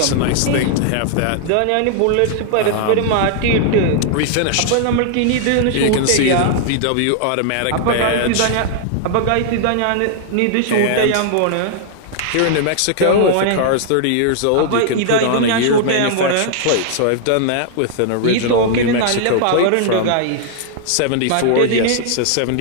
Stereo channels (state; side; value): different; both; correlation -0.01